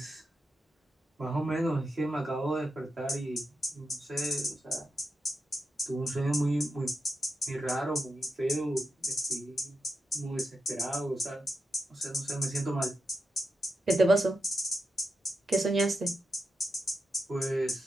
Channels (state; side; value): normal; both; correlation 0.87